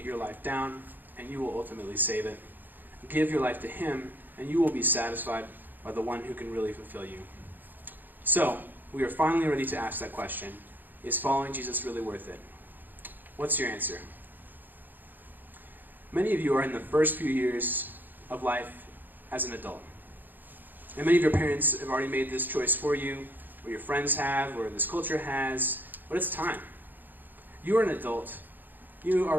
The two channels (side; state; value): left; late; 0.089 ms